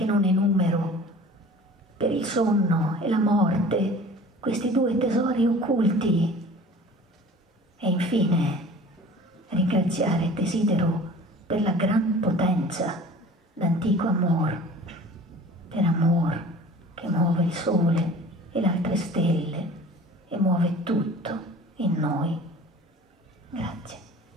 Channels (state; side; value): normal; both; correlation 0.44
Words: non enumero, per il sonno e la morte, questi due tesori occulti. E infine ringraziare desidero per la gran potenza d'antico amor, per amor che muove il sole e le altre stelle e muove tutto in noi.